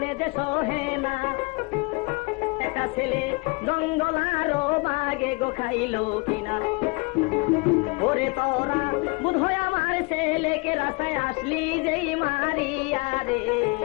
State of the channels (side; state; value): right; quieter; 28.9 dB